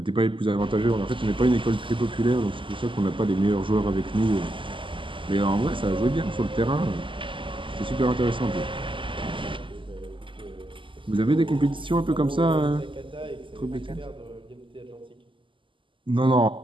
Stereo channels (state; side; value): late; left; 0.25 ms